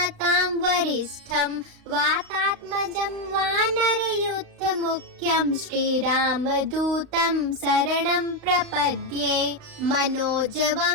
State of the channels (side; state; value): left; late; 35 ms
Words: वरिष्ठं वातात्मजं वानरयूथमुख्यं श्रीरामदूतं शरणं प्रपद्ये।